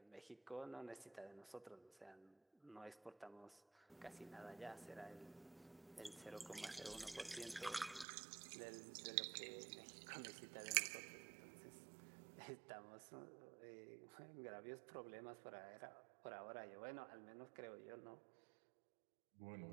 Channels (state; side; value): drops out; left; at 8.1 s